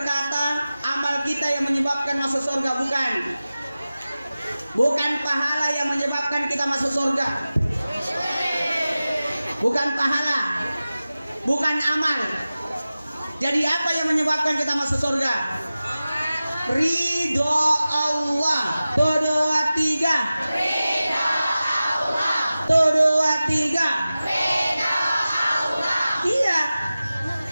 amal kita yang menyebabkan masuk surga, bukan pahala yang menyebabkan kita masuk surga. Bukan pahala, bukan amal. Jadi apa yang menyebabkan kita masuk surga? Ridho Allah. 1, 2, 3. Ridho Allah. 1, 2, 3. Ridho Allah. Iya.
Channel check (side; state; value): both; inverted; correlation -0.96